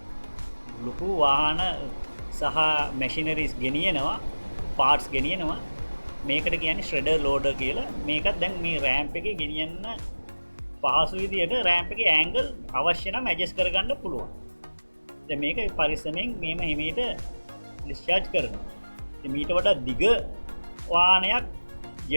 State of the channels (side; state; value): both; inverted; correlation -1.00